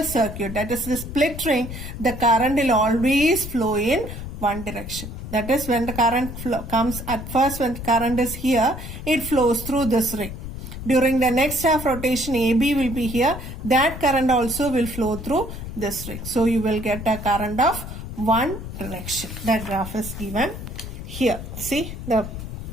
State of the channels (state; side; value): noise; left; rumble, 9 dB below the sound